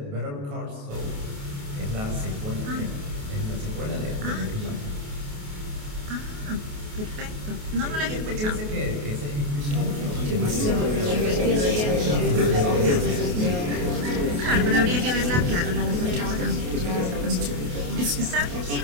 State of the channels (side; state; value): left; late; 28 ms